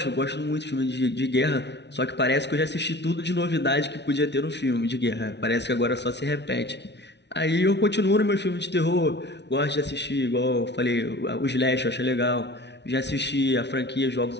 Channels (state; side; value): late; right; 0.50 ms